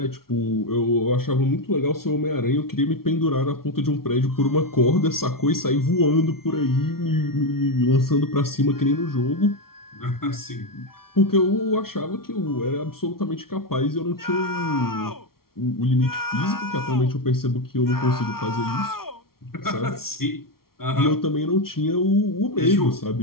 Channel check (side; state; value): right; late; 0.94 ms